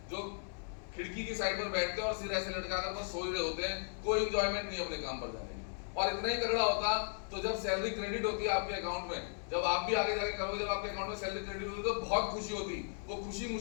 जो खिड़की की साइड पर बैठते हैं और सिर ऐसे लटकाकर बस सो रहे होते हैं, कोई एंजॉयमेंट नहीं अपने काम पर जाने की। और इतना ही तगड़ा होता तो जब सैलरी क्रेडिट होती है आपके अकाउंट में, जब आप भी आगे जाके करोगे, जब आपके अकाउंट में सैलरी क्रेडिट होती है तो बहुत खुशी होती। वो खुशी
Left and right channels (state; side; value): silent; right; 54 dB below the other